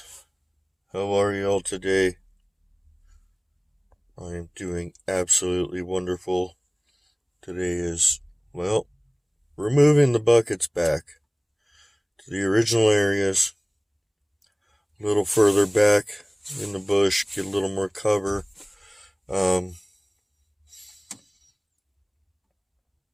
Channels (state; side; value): identical; both; correlation 1.00